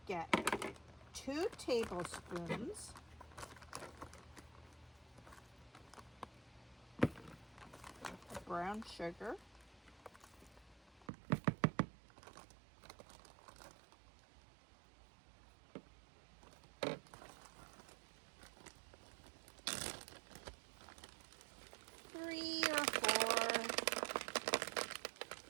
get 2 tablespoons of brown sugar. Three or 4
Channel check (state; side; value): drops out; left; at 11.1 s